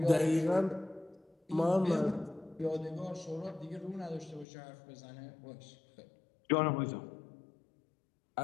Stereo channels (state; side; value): drops out; right; at 4.5 s